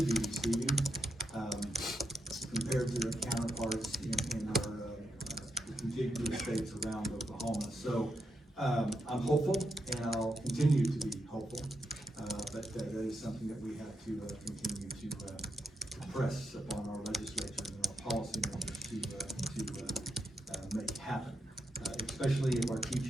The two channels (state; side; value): normal; both; correlation 0.83